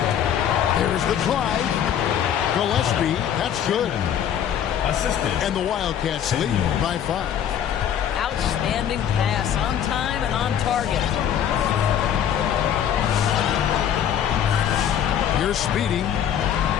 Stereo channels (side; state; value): right; quieter; 9.4 dB